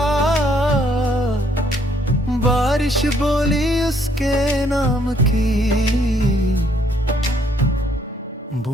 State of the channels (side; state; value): both; normal; correlation 0.67